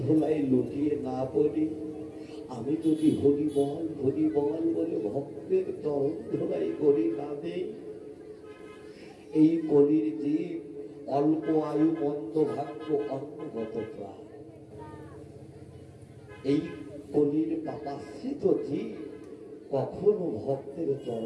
ধোলাই লুটিয়ে না পড়ি, আমি যদি হরিবল হরিবল বলে ভক্তের চরণ ধোলাই করি না দেই, এই কলির জীব অল্প আয়ু মন্দ ভাগ্য অন্নগত প্রাণ, এই কলির পাপাশ্রিত জীব কখনো ভক্তের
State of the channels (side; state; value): both; identical; correlation 1.00